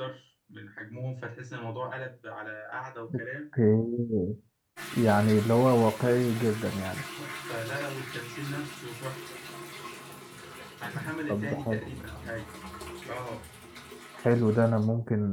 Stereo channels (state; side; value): identical; both; correlation 1.00